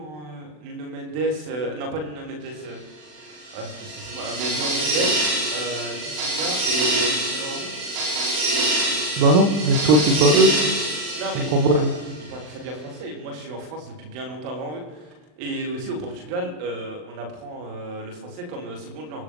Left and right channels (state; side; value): late; left; 40 ms